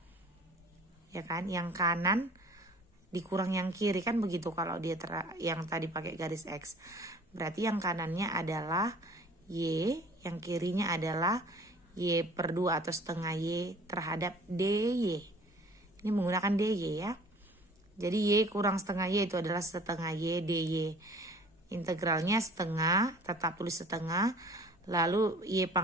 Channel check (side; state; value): both; normal; correlation 0.49